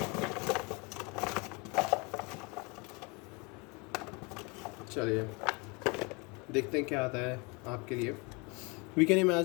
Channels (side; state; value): right; quieter; 29.3 dB